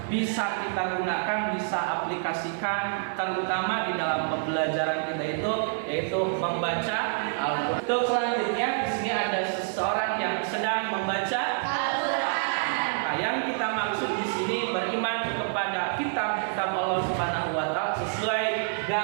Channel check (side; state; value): left; silent; digital silence